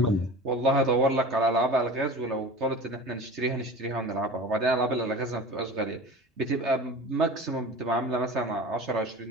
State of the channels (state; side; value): normal; both; correlation 0.36